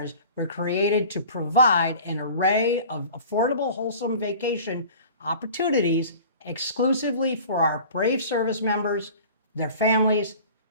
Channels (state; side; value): inverted; both; correlation -0.43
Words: were created to provide an array of affordable, wholesome vacation opportunities exclusively for our brave service members, their families,